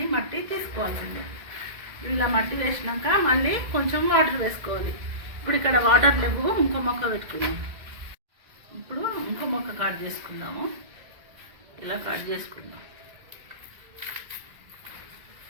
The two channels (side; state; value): left; late; 2.0 ms